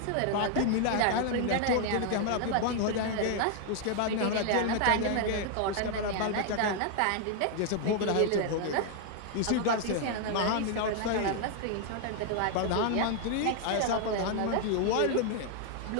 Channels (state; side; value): different; both; correlation 0.00